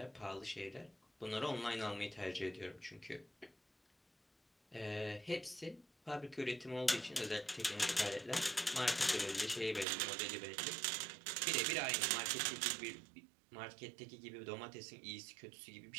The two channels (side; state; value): left; drops out; at 9.9 s